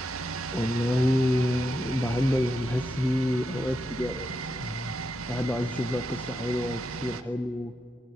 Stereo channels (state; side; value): normal; both; correlation 0.84